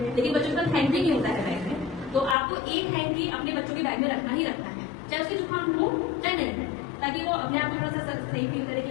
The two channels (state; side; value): drops out; right; at 2.4 s